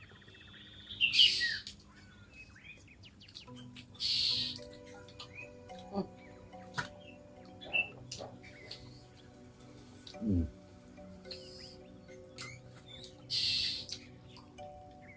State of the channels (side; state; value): both; identical; correlation 1.00